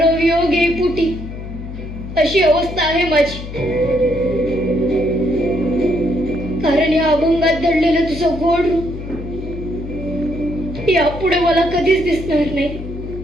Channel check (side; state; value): left; noise; hum, 10 dB below the sound